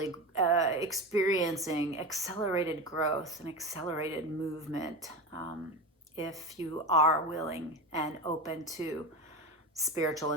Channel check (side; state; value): both; normal; correlation 0.24